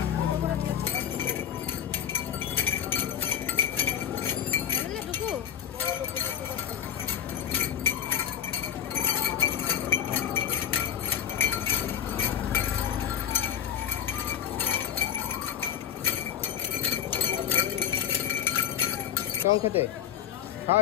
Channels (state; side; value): quieter; right; 9.3 dB